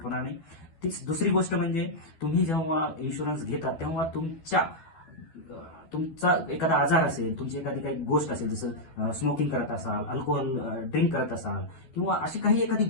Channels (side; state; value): right; late; 12 ms